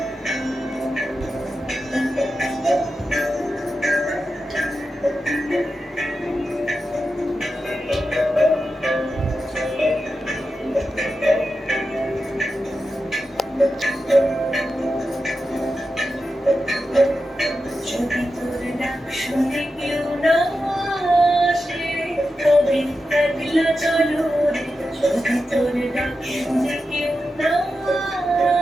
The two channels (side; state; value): both; normal; correlation 0.90